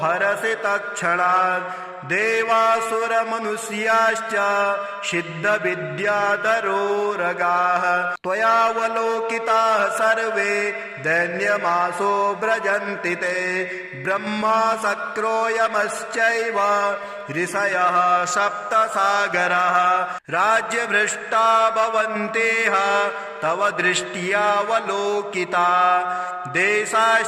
हरसि तत्क्षणात् देवासुरमनुष्याश्च सिद्धविद्याधरोरगाः त्वयावलोकिताः सर्वे दैन्यमासो व्रजन्ति ते ब्रह्मा शक्रो यमश्चैव ऋषयः सप्तसागराः राज्यभ्रष्टा भवन्तेह तव दृष्ट्यावलोकिता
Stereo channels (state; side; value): identical; both; correlation 1.00